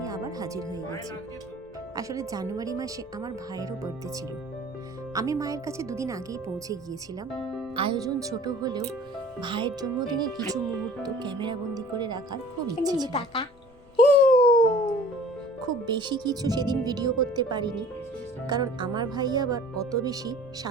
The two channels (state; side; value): noise; left; rumble, 27 dB below the sound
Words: আবার হাজির হয়ে গেছি। আসলে জানুয়ারি মাসে আমার ভাইয়েরও বার্থডে ছিল। আমি মায়ের কাছে দুদিন আগেই পৌঁছে গিয়েছিলাম। আয়োজন ছোট হলেও ভাইয়ের জন্মদিনের কিছু মুহূর্ত ক্যামেরাবন্দি করে রাখার খুব ইচ্ছে ছিল। খুব বেশি কিছু সেদিন ভিডিও করতে পারিনি, কারণ আমার ভাই আবার অত বেশি